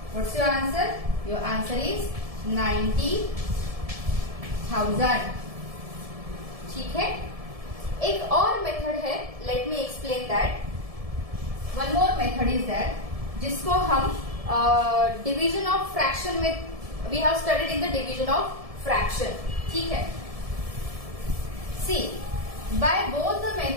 what's your answer? Your answer is 90,000. ठीक है. एक और method है. Let me explain that. One more method is that जिसको हम division of fraction में we have studied in the division of fraction. ठीक है. सी, by both the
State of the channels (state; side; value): late; left; 1.7 ms